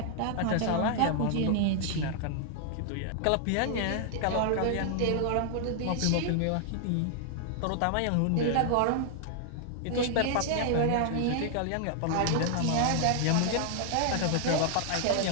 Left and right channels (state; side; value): different; both; correlation -0.01